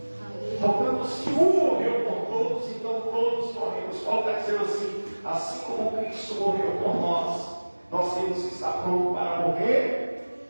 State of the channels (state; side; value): inverted; both; correlation -1.00